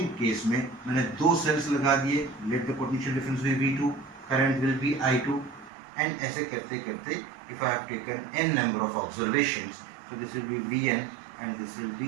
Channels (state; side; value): drops out; left; at 5.7 s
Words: case में मैंने दो सेल्स लगा दिए, let the potential difference be V2, current will be I2, and ऐसे करते करते if I have taken n number of observations, so this will be Vn and this will be